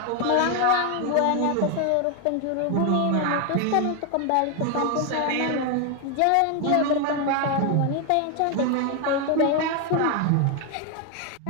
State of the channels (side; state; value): both; different; correlation 0.01